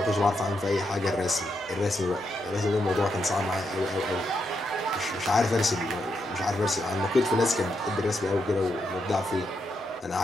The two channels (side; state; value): both; normal; correlation 0.82